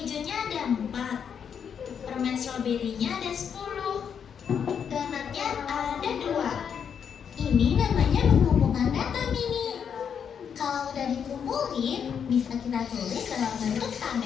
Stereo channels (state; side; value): quieter; right; 7.5 dB